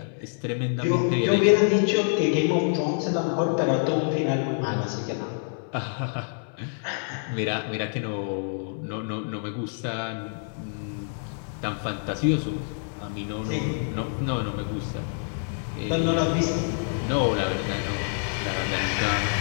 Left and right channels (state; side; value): silent; right; 60 dB below the other